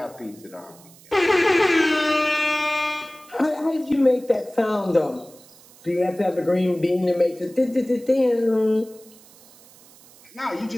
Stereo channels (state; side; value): noise; right; hiss, 25 dB below the sound